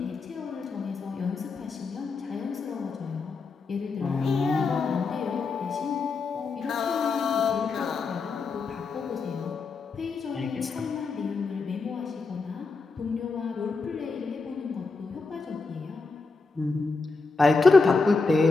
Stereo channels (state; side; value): quieter; right; 4.2 dB